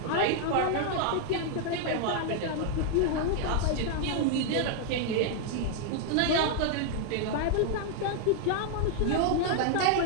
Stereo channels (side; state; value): both; different; correlation 0.00